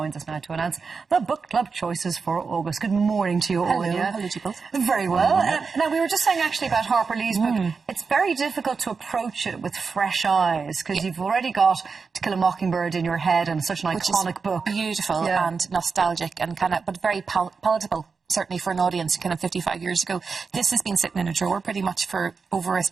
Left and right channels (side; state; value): left; quieter; 5.0 dB